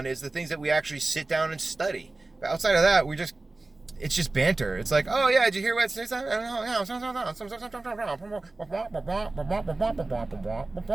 is the things that we actually sit down and study. But outside of that, it's just banter. It's like, oh yeah, did you hear what?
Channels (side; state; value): left; quieter; 3.2 dB